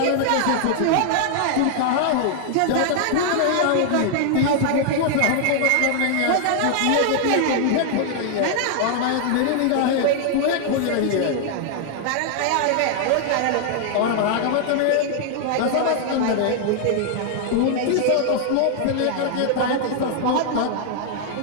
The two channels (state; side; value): different; both; correlation 0.00